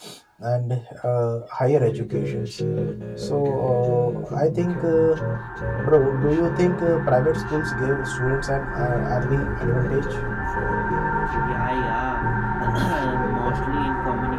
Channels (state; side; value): identical; both; correlation 1.00